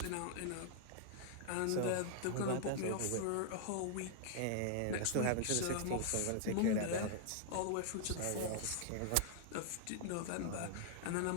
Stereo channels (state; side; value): different; both; correlation -0.01